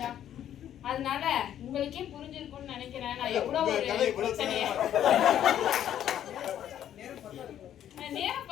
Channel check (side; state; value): right; quieter; 10.7 dB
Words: அதனால உங்களுக்கே புரிஞ்சிருக்கும்னு நினைக்கிறேன் நான் எவ்வளவு ஒரு பிரச்சனைய. நேரம்